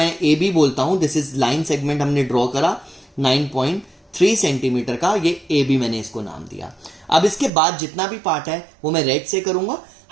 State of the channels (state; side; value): drops out; left; at 7.5 s